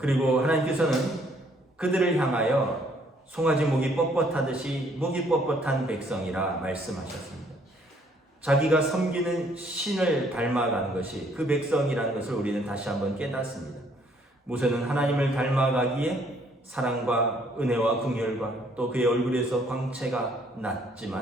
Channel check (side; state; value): both; normal; correlation 0.64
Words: 하나님께서는 그들을 향하여 송아지 목이 뻣뻣하듯이 목이 뻣뻣한 백성이라 말씀하셨습니다. 자기가 섬기는 신을 닮아가는 것이 그 백성이라는 것을 우리는 다시 한번 깨닫습니다. 모세는 하나님을 닮아가기에 사랑과 은혜와 긍휼과 또 그의 얼굴에서 광채가